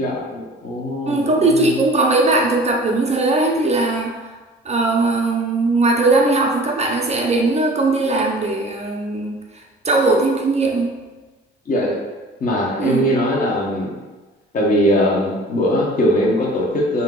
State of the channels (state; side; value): normal; both; correlation 0.45